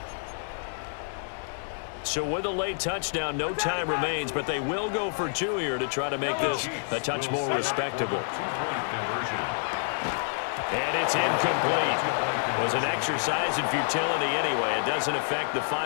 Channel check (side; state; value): right; silent; digital silence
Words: So with a late touchdown, no time remains, but they will go for two here to try to make this a touch more respectable. And it's incomplete. It was an exercise in futility anyway. It doesn't affect the